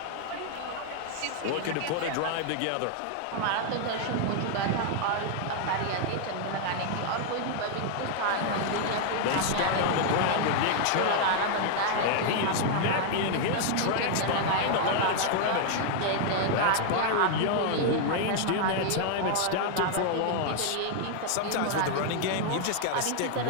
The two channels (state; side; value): different; both; correlation 0.00